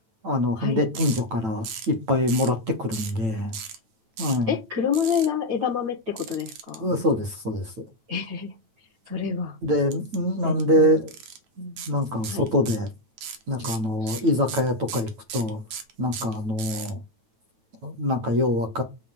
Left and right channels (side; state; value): left; late; 9.1 ms